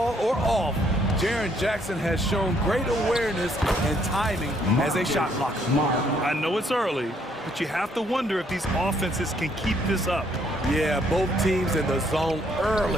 or off, Jaren Jackson has shown great awareness and timing as a shot blocker. I know it's early, but you have to wonder if these offenses can keep this up. Yeah, both teams in the zone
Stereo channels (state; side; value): normal; both; correlation 0.68